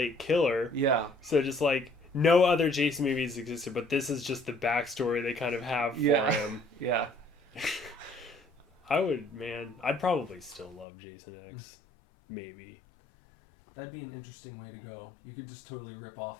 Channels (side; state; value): right; drops out; at 10.9 s